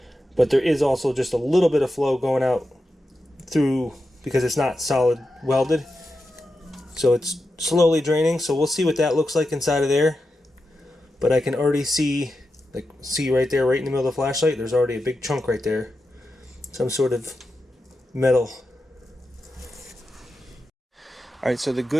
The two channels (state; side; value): normal; both; correlation 0.89